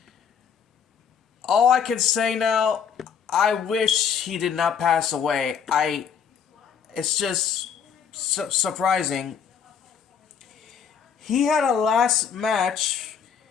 All I can say now, I wish he did not pass away. It's just surprising. He had a last match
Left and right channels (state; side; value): quieter; right; 7.3 dB